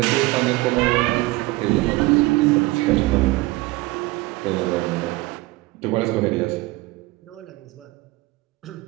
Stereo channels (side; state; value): left; quieter; 21.3 dB